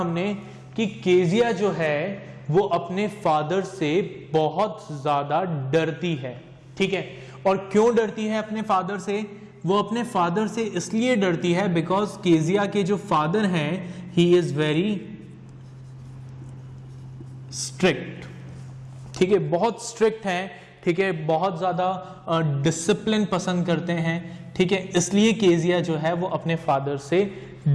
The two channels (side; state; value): both; identical; correlation 1.00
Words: कि केजिया जो है वो अपने फादर से बहुत ज्यादा डरती है, ठीक है। और क्यों डरती है अपने फादर से? वो अपने फादर से इसलिए डरती है बिकॉज केजिया के जो फादर हैं ही इज वेरी स्ट्रिक्ट, ठीक है, बहुत स्ट्रिक्ट हैं, ठीक है, बहुत ज्यादा डिसिप्लिन पसंद करते हैं, ठीक है, इसलिए केजिया जो है वो अपने फादर से